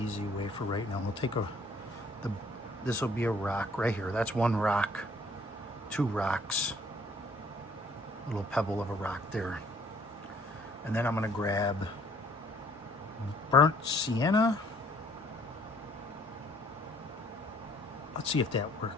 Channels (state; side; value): normal; both; correlation 0.61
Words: way for right now. We'll take this will be a rock right here. That's one rock, two rocks. Little pebble of a rock there. And then I'm gonna grab burnt sienna. Let's see if that